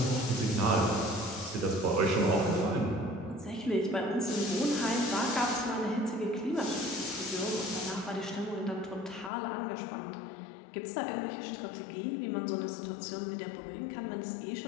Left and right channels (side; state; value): right; drops out; at 9.3 s